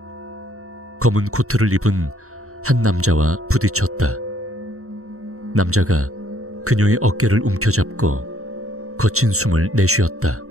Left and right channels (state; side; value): late; left; 0.64 ms